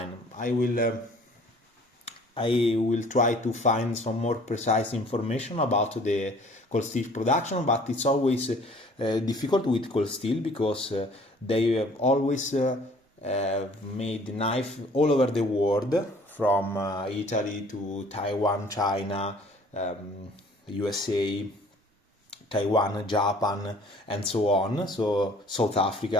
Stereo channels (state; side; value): normal; both; correlation 0.53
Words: I will try to find some more precise information about the cold steel production, but it's always difficult with cold steel because they have always made knife all over the world, from Italy to Taiwan, China, USA, Taiwan, Japan, and so on, so South